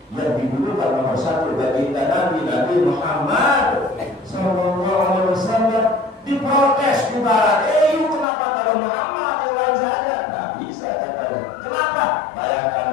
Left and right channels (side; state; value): right; drops out; at 8.2 s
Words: yang didulukan nomor 1 baginda Nabi Muhammad Sallallahu Alaihi Wasallam. Diprotes di barat, kenapa taruh Muhammad yang lain saja? Nggak bisa katanya. Kenapa? Bayangkan